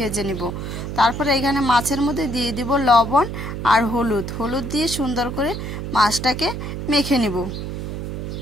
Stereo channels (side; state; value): right; noise; hum, 6 dB below the sound